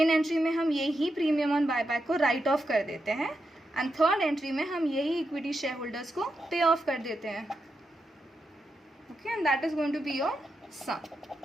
एंट्री में हम यही प्रीमियम ऑन बायबैक को राइट ऑफ कर देते हैं एंड थर्ड एंट्री में हम यही इक्विटी शेयर होल्डर्स को पे ऑफ कर देते हैं. Okay, and that is going to be your sum,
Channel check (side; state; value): both; normal; correlation 0.86